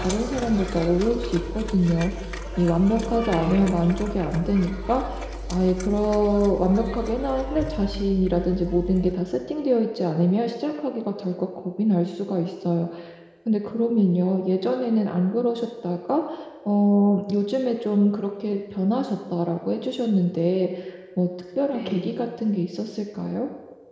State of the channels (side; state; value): both; identical; correlation 1.00